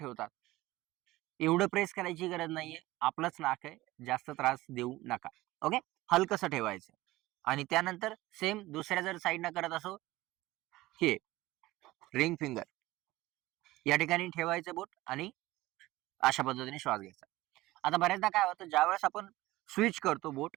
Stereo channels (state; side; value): quieter; left; 18.1 dB